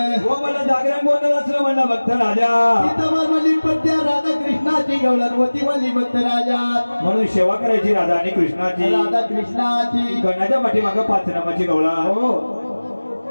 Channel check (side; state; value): both; inverted; correlation -1.00